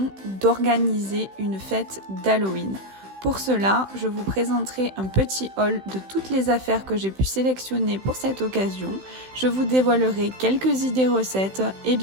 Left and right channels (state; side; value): late; left; 16 ms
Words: d'organiser une fête d'Halloween. Pour cela, je vous présenterai un petit haul de toutes les affaires que j'ai pu sélectionner pour cette occasion. Je vous dévoilerai quelques idées recettes et